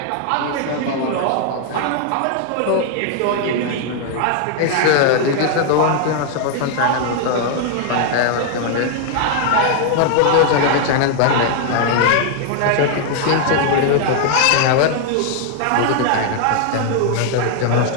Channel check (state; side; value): different; both; correlation 0.00